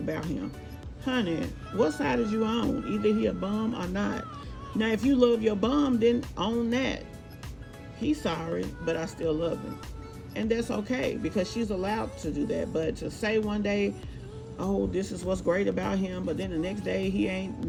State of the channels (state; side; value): identical; both; correlation 1.00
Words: him. Honey, what side is you on? Either he a bum or not. Now, if you love your bum, then own that. He's sorry, but I still love him. And that's okay, because she's allowed to do that. But to say one day, oh, this is what's great about him, but then the next day he